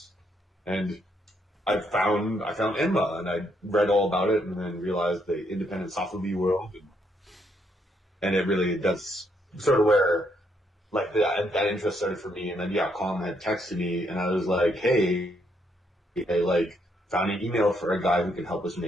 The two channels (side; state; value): both; normal; correlation 0.74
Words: And I found Enma, and I read all about it, and then realized the independent sofubi world, and it really does sort of where like that interest started for me. And then Colin had texted me, and I was like, hey, I like found an email for a guy who could help us